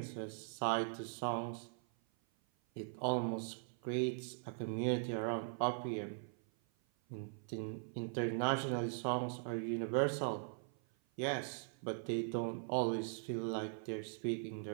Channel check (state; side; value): silent; left; 51 dB below the other